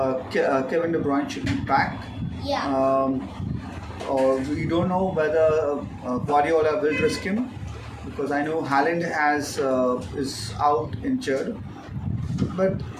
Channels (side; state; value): both; identical; correlation 1.00